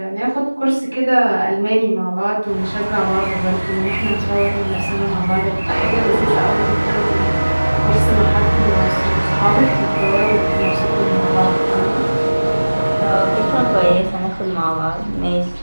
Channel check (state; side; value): inverted; both; correlation -1.00